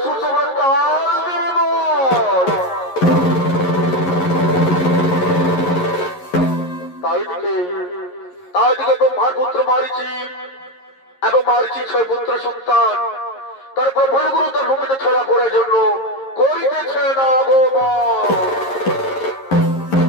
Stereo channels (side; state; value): right; late; 11 ms